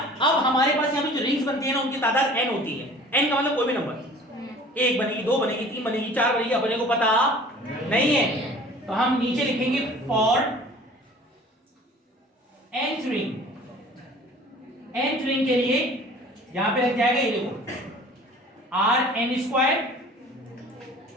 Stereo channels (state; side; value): normal; both; correlation 0.47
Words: हमारे पास यहाँ पे जो रिंग्स बनती है ना उनकी तादाद n होती है। n का मतलब कोई भी नंबर, 1 बनेगी, 2 बनेगी, 3 बनेगी, 4 बनेगी, अपने को पता नहीं है, तो हम नीचे लिखेंगे for nth ring. nth ring के लिए यहां पे लग जाएगा, ये देखो आर एन स्क्वायर,